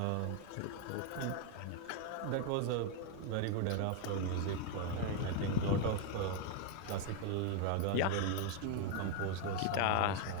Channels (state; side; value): different; both; correlation 0.00